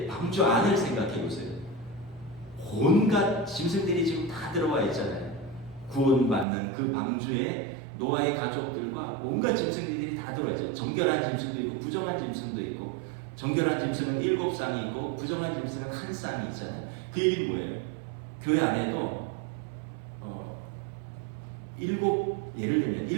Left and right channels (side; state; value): left; drops out; at 6.5 s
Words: 방주 안을 생각해 보세요. 온갖 짐승들이 지금 다 들어와 있잖아요. 구원받는 그 방주에 노아의 가족들과 온갖 짐승들이 다 들어와 있죠. 정결한 짐승도 있고 부정한 짐승도 있고, 정결한 짐승은 7쌍이 있고 부정한 짐승은 1쌍이 있잖아요. 그 얘기는 뭐예요? 교회 안에도 예를 들면